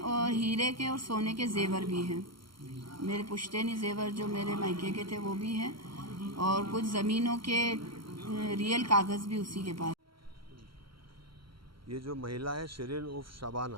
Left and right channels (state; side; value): late; left; 0.74 ms